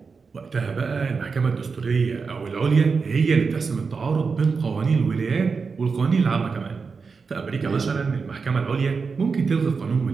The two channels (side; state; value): left; quieter; 5.0 dB